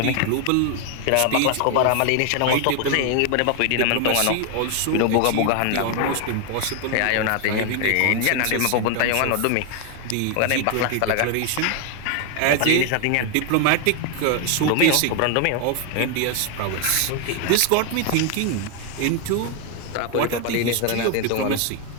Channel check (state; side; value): different; both; correlation 0.01